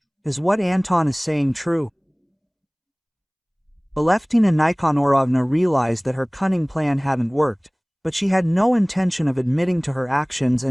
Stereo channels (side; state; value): both; identical; correlation 1.00